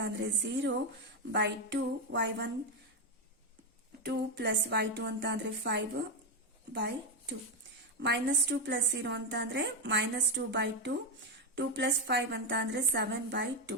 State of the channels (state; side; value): normal; both; correlation 0.08